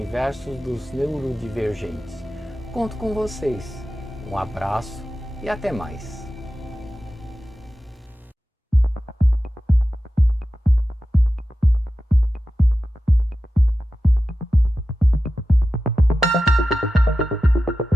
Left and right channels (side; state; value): both; normal; correlation 0.93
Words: dos neurodivergentes. Conto com vocês. Um abraço e até mais.